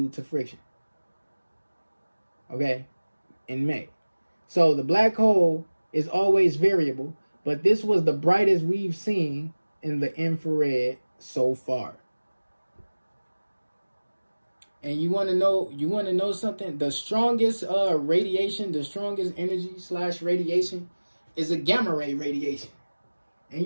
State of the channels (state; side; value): inverted; both; correlation -1.00